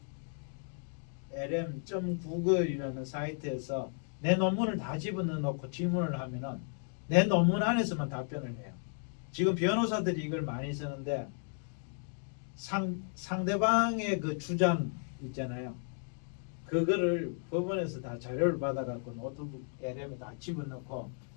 lm.google.이라는 사이트에서 내 논문을 다 집어넣어 놓고 질문을 하면은 내 논문 안에서만 답변을 해요. 지금 변호사들이 이걸 많이 쓰는데 상대방의 그 주장 있잖아요. 그거를 법원에서 다 자료를 받아갖고 노트북 LM에 다 집어넣고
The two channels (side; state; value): right; silent; 55 dB below the other